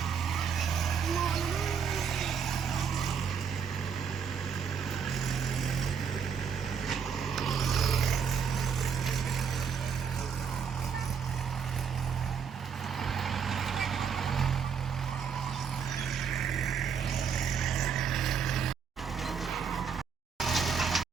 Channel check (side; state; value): left; quieter; 6.8 dB